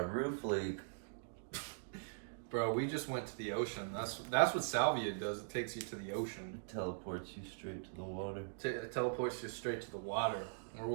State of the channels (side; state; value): left; silent; digital silence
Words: roof leak. Bro, we just went to the ocean. That's what salvia does. It takes you to the ocean. It teleports you straight to the water. It teleports you straight to the water or